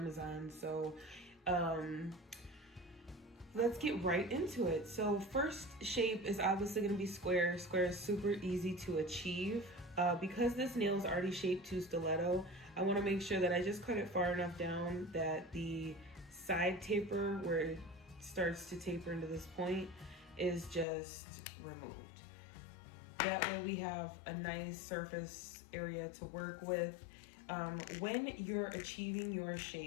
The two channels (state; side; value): drops out; right; at 20.9 s